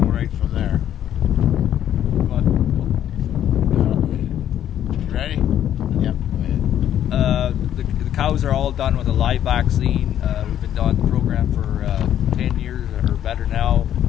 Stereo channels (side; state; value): right; quieter; 10.8 dB